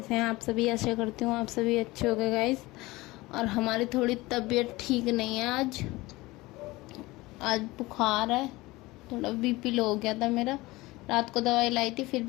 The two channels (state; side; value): quieter; right; 20.7 dB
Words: हैं आप सभी? आशा करती हूँ आप सभी अच्छे हो गए गाइस। और हमारी थोड़ी तबीयत ठीक नहीं है आज बुखार है, थोड़ा बीपी लो हो गया था मेरा। रात को दवाई लाई थी फिर